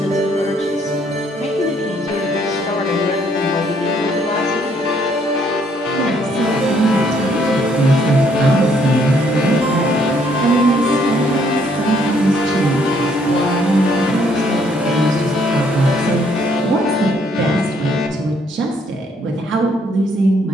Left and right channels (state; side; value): normal; both; correlation 0.67